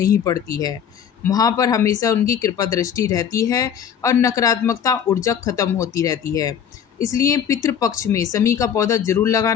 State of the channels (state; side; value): quieter; right; 8.4 dB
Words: पड़ती है। वहाँ पर हमेशा उनकी कृपा दृष्टि रहती है और नकारात्मकता ऊर्जा खत्म होती रहती है। इसलिए पितृपक्ष में शमी का पौधा जरूर